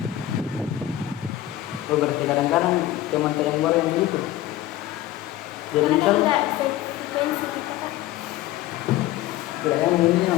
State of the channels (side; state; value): right; quieter; 14.1 dB